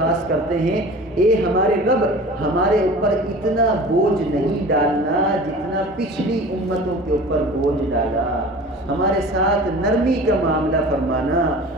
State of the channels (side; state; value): both; normal; correlation 0.40